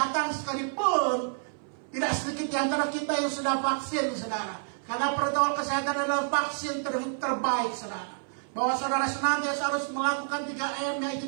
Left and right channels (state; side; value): silent; left; 59 dB below the other